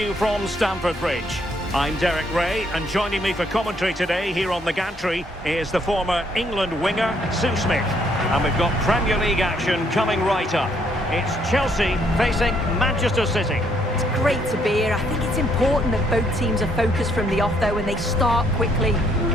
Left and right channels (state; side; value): normal; both; correlation 0.69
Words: from Stamford Bridge. I'm Derek Ray, and joining me for commentary today here on the gantry is the former England winger, Sue Smith. And we've got Premier League action coming right up. It's Chelsea facing Manchester City. It's great to be here. I think it's important that both teams are focused from the off though and they start quickly.